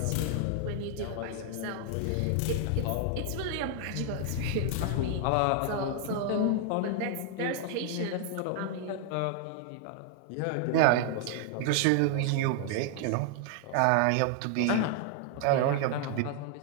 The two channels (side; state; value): both; different; correlation 0.00